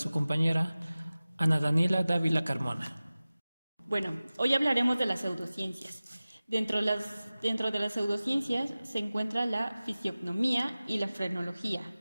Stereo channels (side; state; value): both; inverted; correlation -0.97